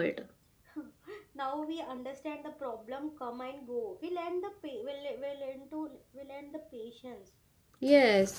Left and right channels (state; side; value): identical; both; correlation 1.00